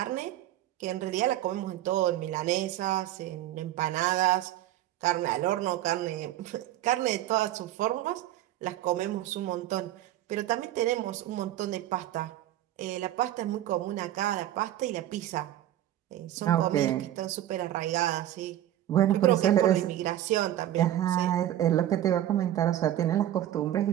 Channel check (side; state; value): left; quieter; 13.0 dB